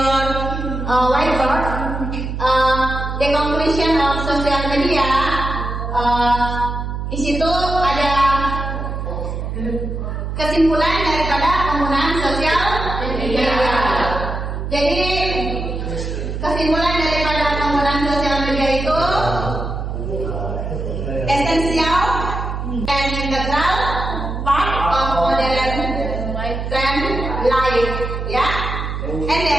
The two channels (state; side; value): noise; right; hum, 4 dB below the sound